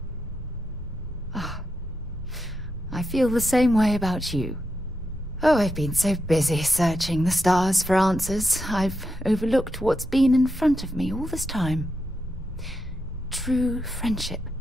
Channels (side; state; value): both; normal; correlation 0.85